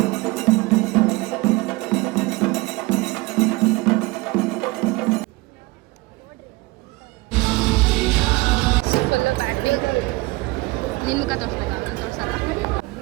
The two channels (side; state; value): left; quieter; 22.6 dB